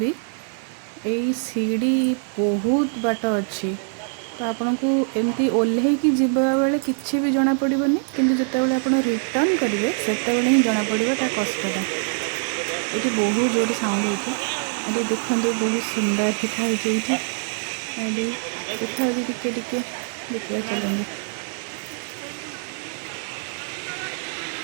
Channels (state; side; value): silent; left; 63 dB below the other